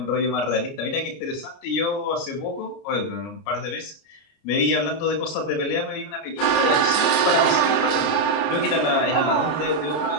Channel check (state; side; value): late; right; 29 ms